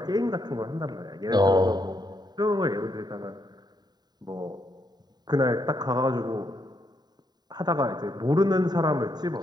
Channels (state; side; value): late; left; 0.20 ms